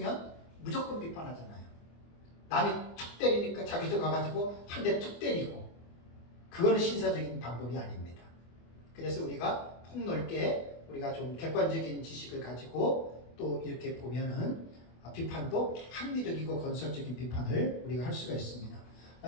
무조건 비판하잖아요. 남이 툭 때리니까 자기도 가가지고 한 대 툭 때리고 그거는 신사적인 방법이 아닙니다. 그래서 우리가 폭넓게 우리가 좀 객관적인 지식을 가지고 또 이렇게 보면은 비판도 합리적이고 건설적인 비판을 우리가 할 수가 있습니다.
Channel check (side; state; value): right; late; 24 ms